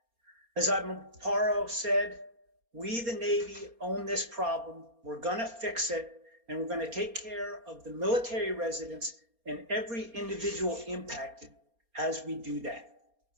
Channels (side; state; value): left; late; 4.3 ms